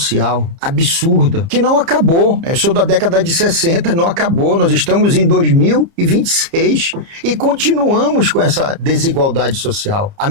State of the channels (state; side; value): late; left; 30 ms